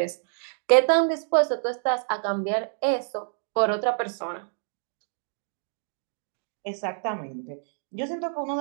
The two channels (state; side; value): silent; left; 60 dB below the other